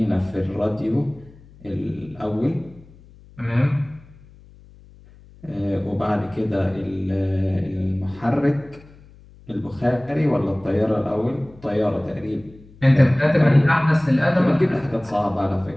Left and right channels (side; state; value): left; noise; hum, 24 dB below the sound